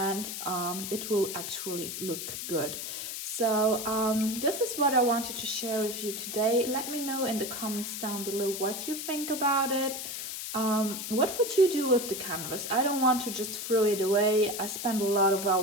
it will actually look good. So this is what I wanted to share with you today. Let me know in the comments down below what you think about it. What would you do with the canvas? I don't want to just throw it away. I spent a lot of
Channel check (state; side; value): noise; left; hiss, 6 dB below the sound